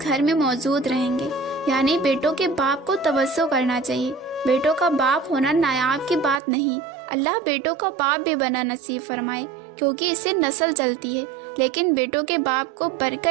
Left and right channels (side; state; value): left; drops out; at 6.4 s